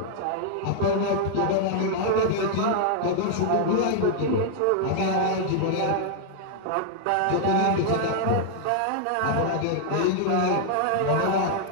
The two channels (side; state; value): both; different; correlation 0.00